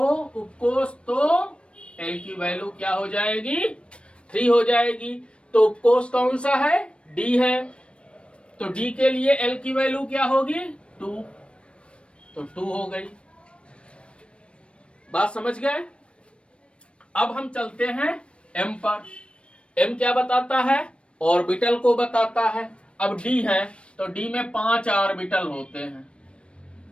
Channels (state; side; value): late; right; 0.059 ms